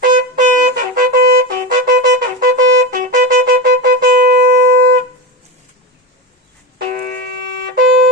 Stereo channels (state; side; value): normal; both; correlation 0.18